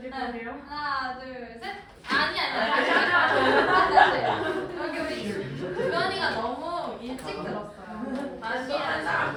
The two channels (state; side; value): identical; both; correlation 1.00